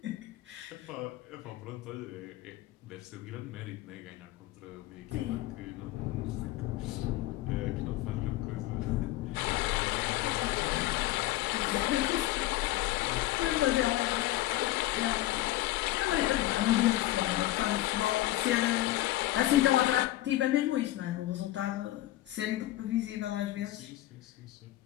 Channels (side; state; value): right; quieter; 15.8 dB